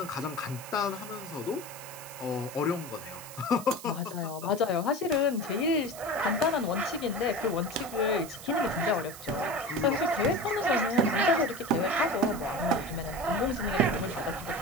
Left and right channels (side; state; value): right; noise; hiss, 14 dB below the sound